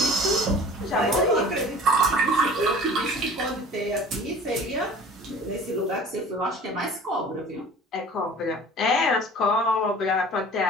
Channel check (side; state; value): both; normal; correlation 0.44